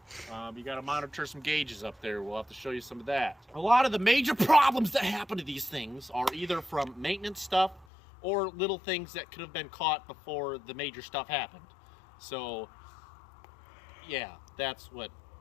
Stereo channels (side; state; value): right; drops out; at 7.9 s